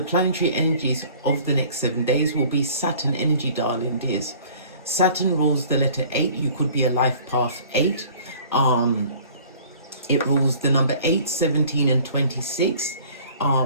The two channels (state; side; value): inverted; both; correlation -0.50